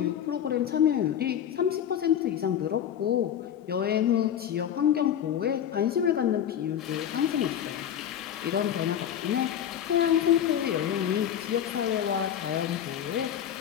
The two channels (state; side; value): quieter; right; 9.7 dB